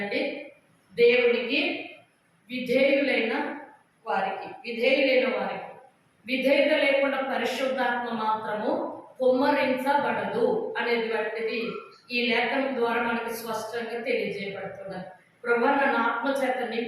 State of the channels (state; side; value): identical; both; correlation 1.00